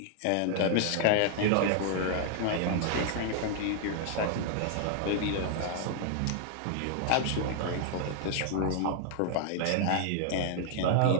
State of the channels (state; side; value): different; both; correlation 0.00